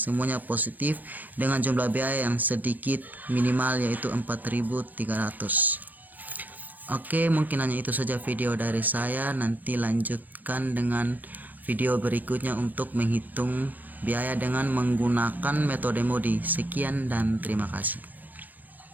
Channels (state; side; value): late; left; 0.086 ms